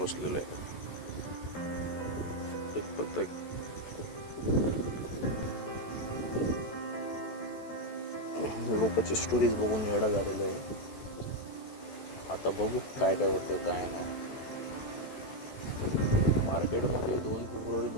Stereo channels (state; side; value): late; right; 14 ms